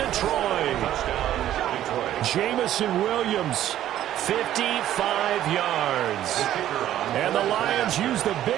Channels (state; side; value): quieter; left; 12.3 dB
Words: Jamison Williams, 55 yards. And the Lions use the